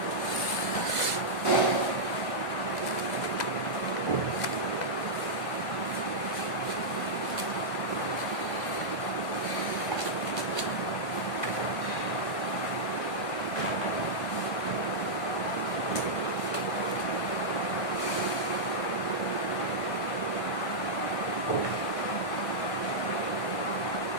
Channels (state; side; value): late; right; 1.6 ms